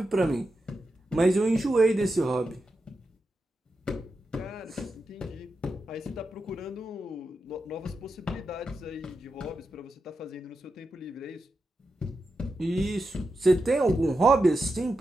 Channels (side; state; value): both; normal; correlation 0.88